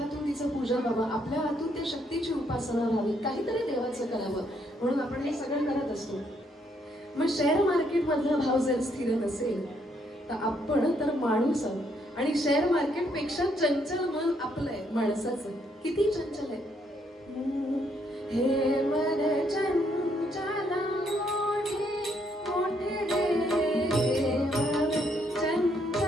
तिचं पूजन व्हावं, आपल्या हातून त्या शक्तीची उपासना व्हावी, काहीतरी देवाचं करावं, म्हणून आपण हे सगळं करत असतो. मग शेअर मार्केट मधला भाव जर स्थिर नसेल तर आपण तर माणूस आहोत, आणि शेअर मार्केट पेक्षा चंचल मन आपलंय माणसाचं. किती चंचल आहे हे मन चंचल मोठे मोठे देव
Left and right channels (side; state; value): both; normal; correlation 0.72